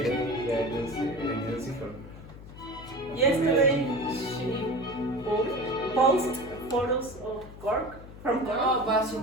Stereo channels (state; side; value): noise; left; hum, 15 dB below the sound